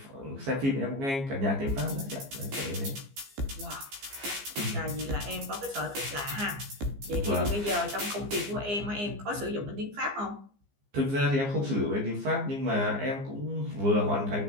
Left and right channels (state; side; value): late; left; 15 ms